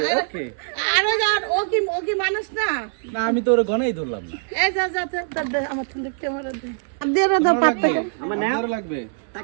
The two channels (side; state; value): left; silent; 64 dB below the other